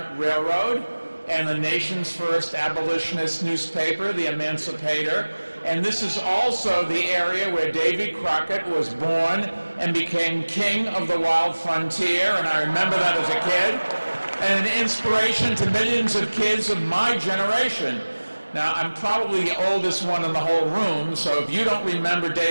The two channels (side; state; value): both; inverted; correlation -1.00